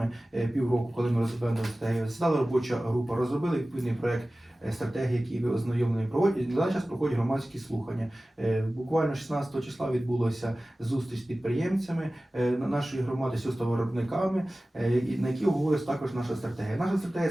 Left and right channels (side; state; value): both; normal; correlation 0.97